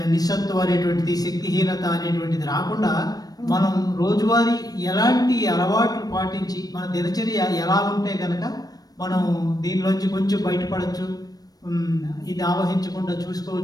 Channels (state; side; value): late; right; 0.18 ms